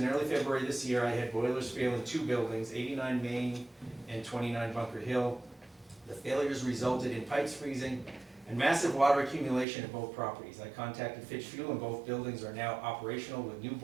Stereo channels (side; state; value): left; drops out; at 9.7 s